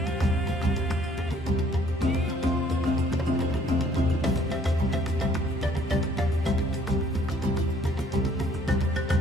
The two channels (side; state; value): both; normal; correlation 0.60